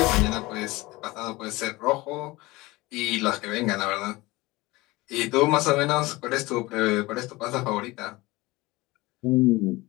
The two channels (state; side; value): quieter; right; 21.1 dB